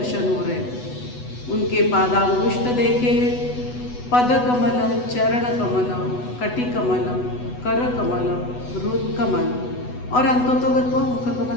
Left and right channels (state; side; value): late; right; 8.1 ms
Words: हो रहे हैं। उनके पादांगुष्ठ देखे, पद कमलम, चरण कमलम, कटि कमलम, कर कमलम, रुद कमल और अंतोतोगत्वा मुख